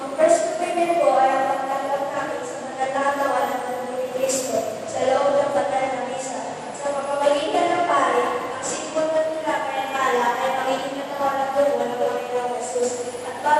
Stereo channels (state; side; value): identical; both; correlation 1.00